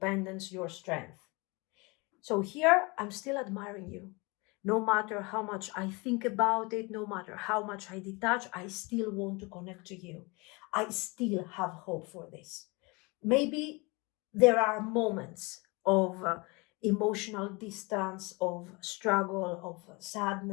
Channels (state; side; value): quieter; right; 27.2 dB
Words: your strength. So here, I'm still admiring you. No matter how much I think about it, no matter how much I detach, I still want to connect to you. I still have hope for this. Maybe there are moments of emotional distance, of struggle, of